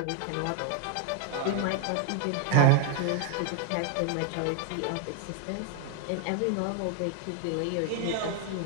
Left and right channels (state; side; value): different; both; correlation 0.00